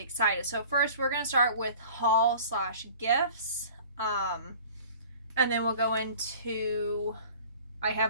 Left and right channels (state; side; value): inverted; both; correlation -0.46